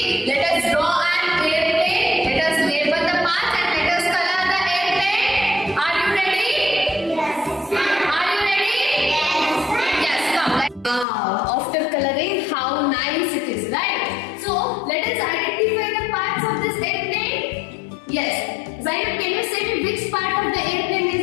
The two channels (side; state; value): right; drops out; at 11.1 s